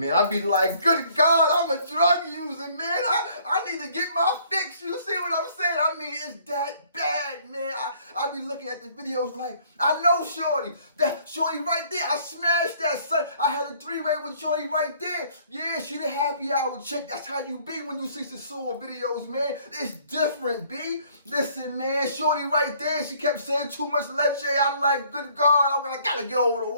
I be like, good God, I'm a drug user, man. I need to get my fix. You see what I'm saying? I mean, it's that bad, man. I be looking at the videos like, I know Shorty. That Shorty right there, I smashed that, son. I had a three-way with Shorty right there. Yeah, she the happy hour chick. That's how you be when you see Sosua videos, man. It's different, B. Listen, man, Shorty right there, she kept saying too much leche. I'm like, good God, I gotta get over the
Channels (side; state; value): both; inverted; correlation -0.60